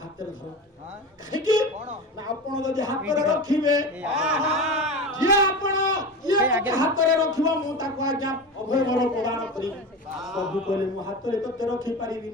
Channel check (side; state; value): both; normal; correlation 0.27